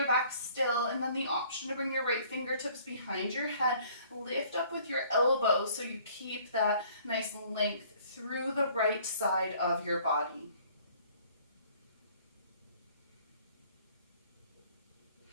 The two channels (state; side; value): inverted; both; correlation -0.56